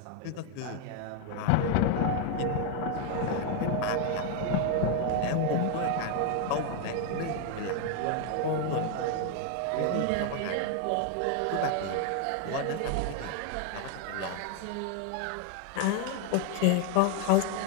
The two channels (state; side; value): different; both; correlation 0.01